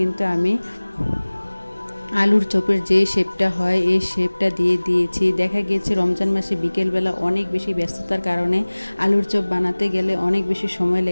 কিন্তু আমি আলুর চপের যে শেপটা হয় এই শেপটা দিয়ে দিয়েছি। দেখা গিয়েছে রমজান মাসে বিকেলবেলা অনেক বেশি ব্যস্ততার কারণে আলুর চপ বানাতে গেলে অনেক বেশি সময়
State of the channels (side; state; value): both; inverted; correlation -1.00